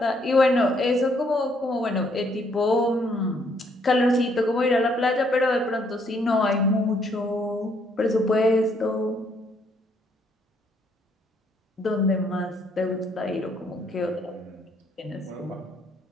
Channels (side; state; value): both; normal; correlation 0.69